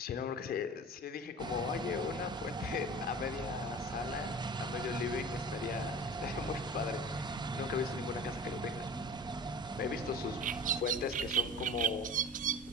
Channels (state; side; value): normal; both; correlation 0.38